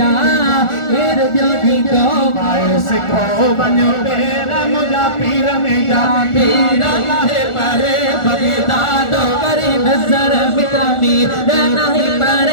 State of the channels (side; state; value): right; late; 1.4 ms